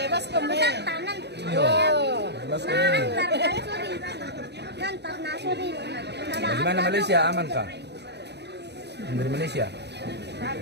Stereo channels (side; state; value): left; late; 0.49 ms